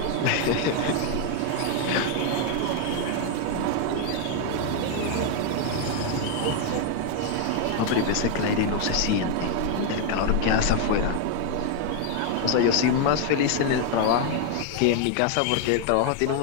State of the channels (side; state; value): both; different; correlation 0.00